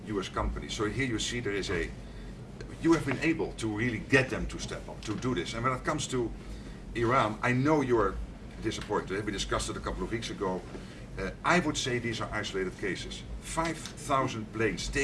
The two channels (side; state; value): both; identical; correlation 1.00